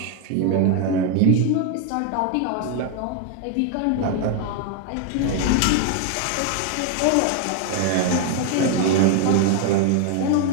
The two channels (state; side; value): different; both; correlation 0.01